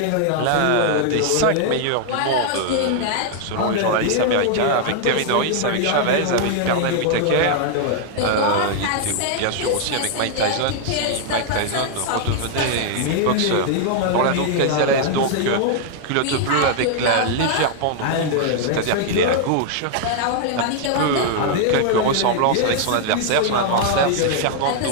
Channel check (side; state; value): both; different; correlation 0.00